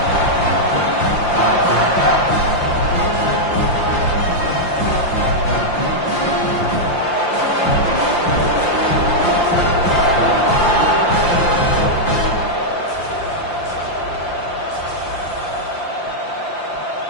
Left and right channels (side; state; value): right; late; 5.8 ms